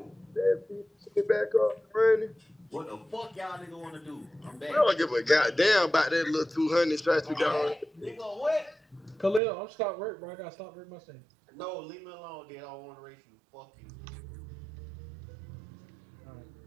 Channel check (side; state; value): left; drops out; at 9.4 s